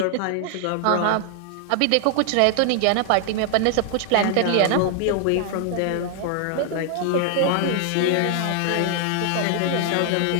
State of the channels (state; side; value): different; both; correlation 0.00